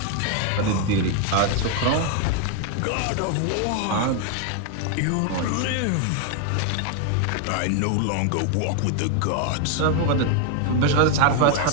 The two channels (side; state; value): both; different; correlation 0.00